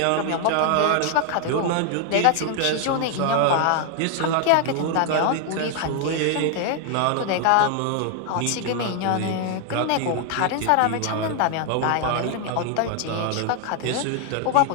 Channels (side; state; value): both; different; correlation 0.00